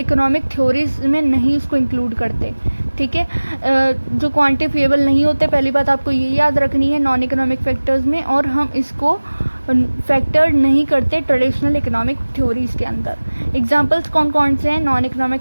थ्योरीज में नहीं उसको इंक्लूड करते. ठीक है, जो क्वांटिफिएबल नहीं होते, पहली बात आपको ये याद रखनी है नॉन इकोनॉमिक फैक्टर्स में, और हम इसको फैक्टर नहीं करते ट्रेडिशनल इकोनॉमिक थ्योरीज के अंदर. एग्जाम्पल्स कौन कौन से हैं नॉन इकोनॉमिक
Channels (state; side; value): inverted; both; correlation -1.00